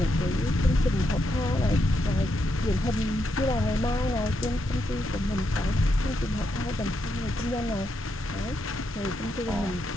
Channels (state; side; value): normal; both; correlation 0.81